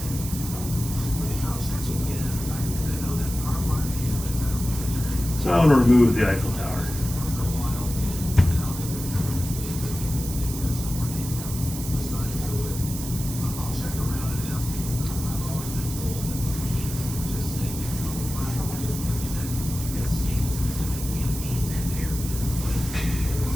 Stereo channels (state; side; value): noise; right; hiss, 9 dB below the sound